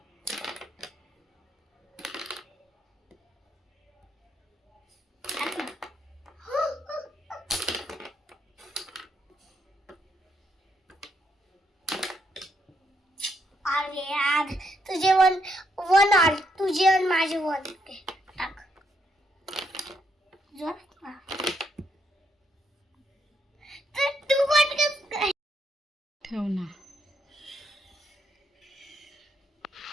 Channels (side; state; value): both; normal; correlation 0.76